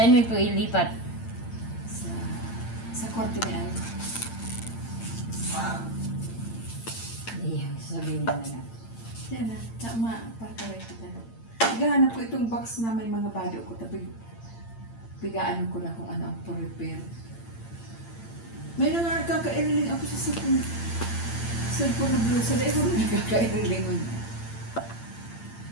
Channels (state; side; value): late; right; 8.8 ms